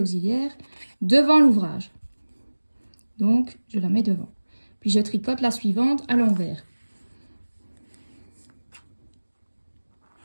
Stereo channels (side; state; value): both; inverted; correlation -1.00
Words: devant l'ouvrage. Donc, je la mets devant. Puis, je tricote la suivante à l'envers.